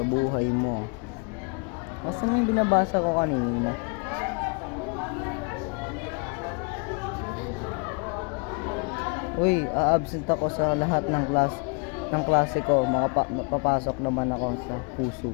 buhay mo. Asan yung binabasa ko kanina? Uy, a-absent ako sa lahat ng klase ko. Papasok naman ako sa puso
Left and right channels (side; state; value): right; quieter; 34.3 dB